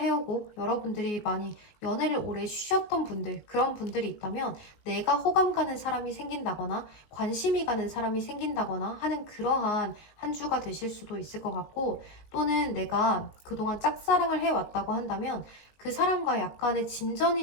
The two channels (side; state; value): right; late; 19 ms